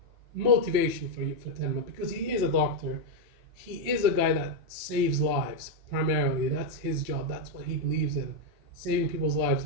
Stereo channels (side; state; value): left; late; 3.1 ms